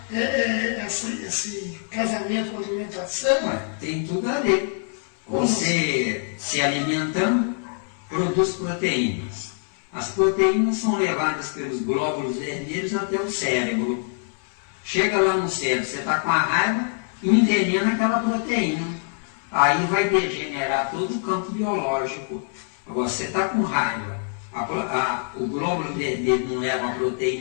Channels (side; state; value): right; silent; 62 dB below the other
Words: esse casamento com a alimentação? Tem tudo a ver. Você se alimentando, produz proteínas. As proteínas são levadas pelos glóbulos vermelhos até o cérebro. Chega lá no cérebro, você está com a raiva, envenena aquela proteína. Aí vai degenerar todo o campo biológico. Agora, você está com raiva, o glóbulo vermelho não leva